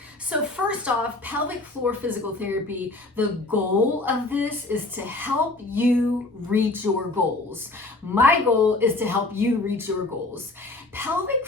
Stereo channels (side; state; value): right; quieter; 3.0 dB